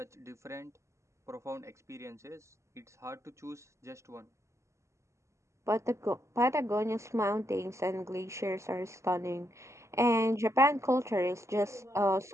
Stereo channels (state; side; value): late; left; 0.14 ms